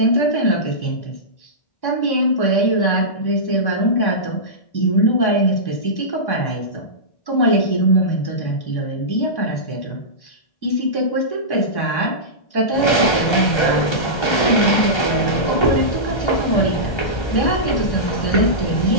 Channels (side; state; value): right; late; 1.3 ms